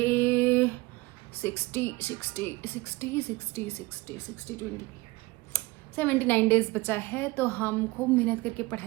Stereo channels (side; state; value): left; quieter; 22.0 dB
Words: 79 डेज बचा है तो हम खूब मेहनत करके